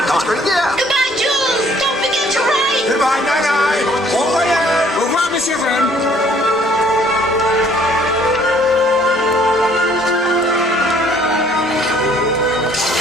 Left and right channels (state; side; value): normal; both; correlation 0.60